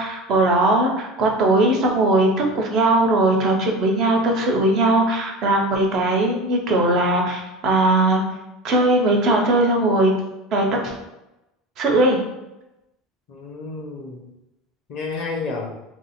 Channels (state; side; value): normal; both; correlation 0.31